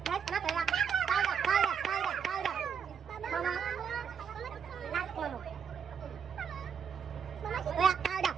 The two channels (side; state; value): left; quieter; 7.3 dB